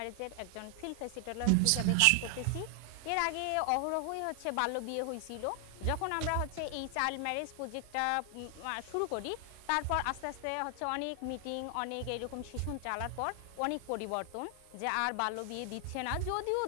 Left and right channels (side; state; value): both; different; correlation 0.00